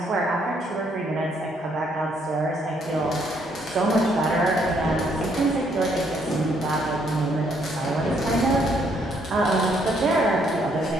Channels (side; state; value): both; normal; correlation 0.70